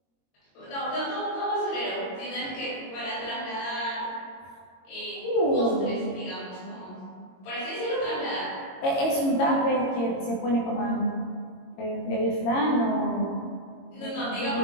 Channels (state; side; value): late; right; 22 ms